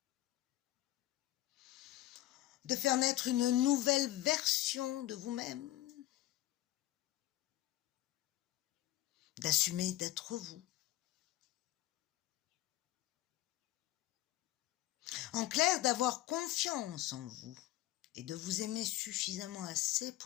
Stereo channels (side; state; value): right; quieter; 15.2 dB